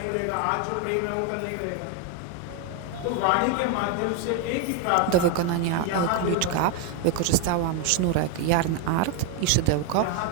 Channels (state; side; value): different; both; correlation 0.01